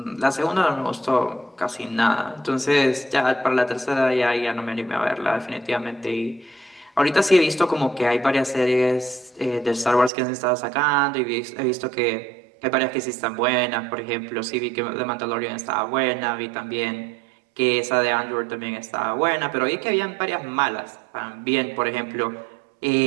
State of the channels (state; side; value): drops out; left; at 10.1 s